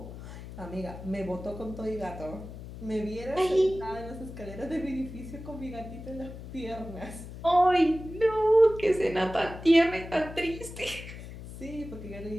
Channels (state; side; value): noise; left; hum, 12 dB below the sound